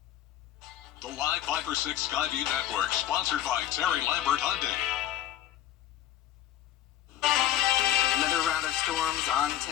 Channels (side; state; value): right; quieter; 12.3 dB